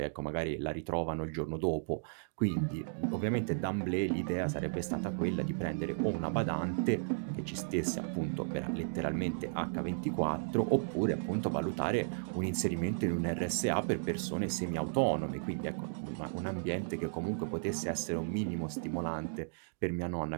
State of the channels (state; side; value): silent; left; digital silence